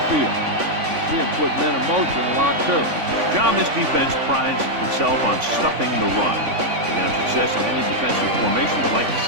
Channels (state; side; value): late; left; 3.5 ms